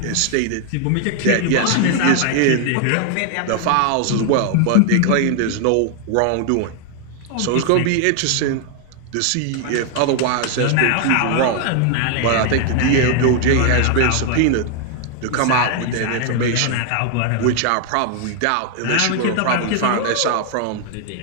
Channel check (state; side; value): different; both; correlation 0.00